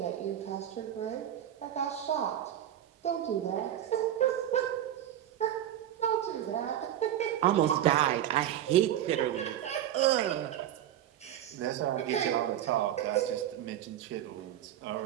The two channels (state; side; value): quieter; left; 11.5 dB